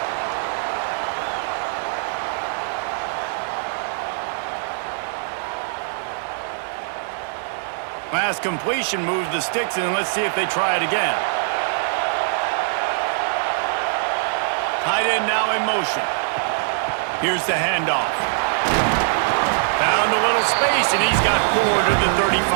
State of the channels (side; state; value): left; silent; digital silence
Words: Pass completion moves the sticks, and let's see if they try it again. Tight end now in motion. Here's the handoff. Found a little space, and he's got 4 to the